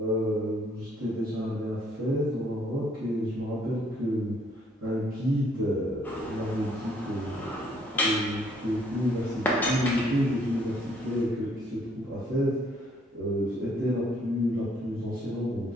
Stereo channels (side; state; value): both; normal; correlation 0.66